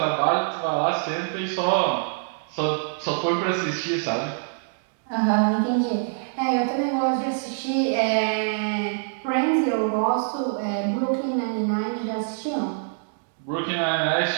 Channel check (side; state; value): left; silent; digital silence